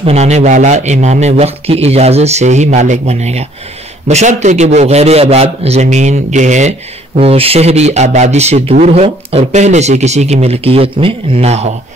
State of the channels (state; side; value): normal; both; correlation 0.61